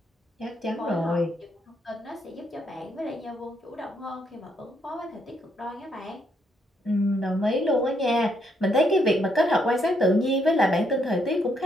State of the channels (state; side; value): normal; both; correlation 0.74